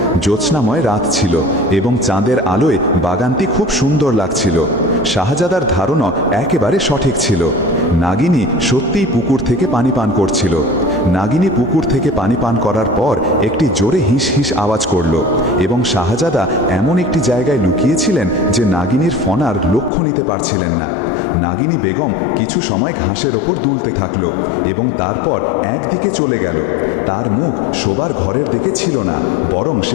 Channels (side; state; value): right; drops out; at 19.9 s